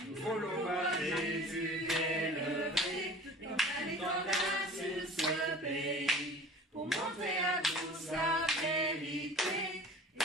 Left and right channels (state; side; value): normal; both; correlation 0.43